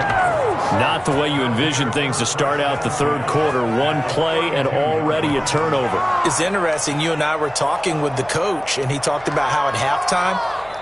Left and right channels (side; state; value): left; noise; hum, 25 dB below the sound